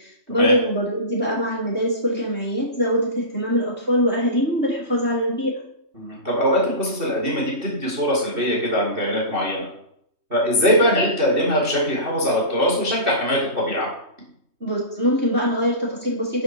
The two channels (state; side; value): late; left; 3.2 ms